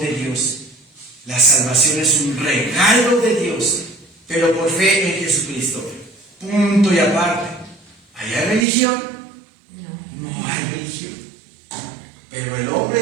Dios. La salvación es un regalo de Dios, pero por fe en Jesucristo. Punto y aparte. ¿Hay religión? No hay religión. Pero el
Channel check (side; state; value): left; drops out; at 8.7 s